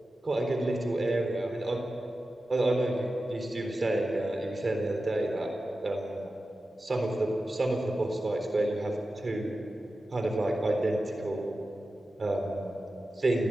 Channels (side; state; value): both; normal; correlation 0.93